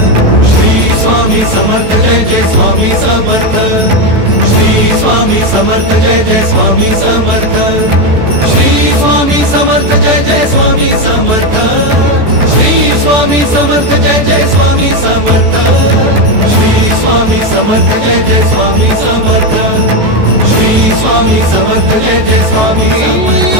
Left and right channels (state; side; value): late; left; 14 ms